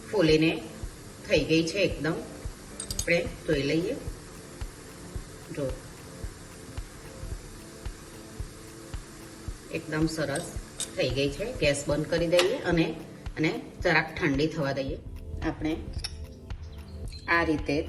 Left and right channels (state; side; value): identical; both; correlation 1.00